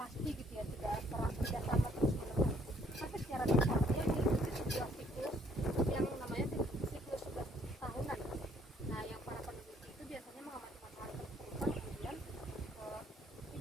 gitu ya, tidak sama terus menerus. Tapi secara dasar dia mengikuti sebuah siklus yang namanya siklus 11 tahunan. Nah yang para peneliti itu biasanya mengamati matahari terus kemudian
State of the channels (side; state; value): both; normal; correlation 0.64